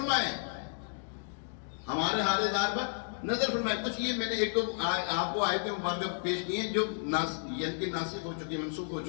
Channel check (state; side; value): silent; right; digital silence